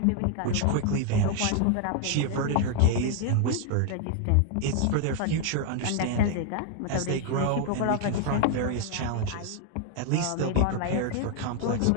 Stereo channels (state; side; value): different; both; correlation 0.00